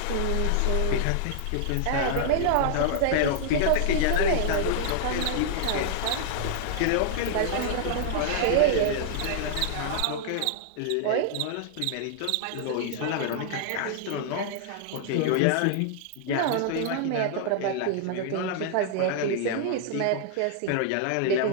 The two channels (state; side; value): different; both; correlation -0.01